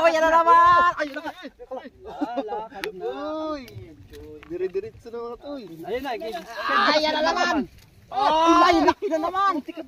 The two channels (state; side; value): identical; both; correlation 1.00